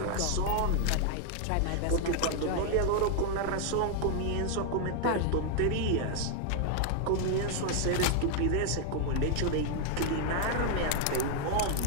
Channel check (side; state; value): both; different; correlation 0.00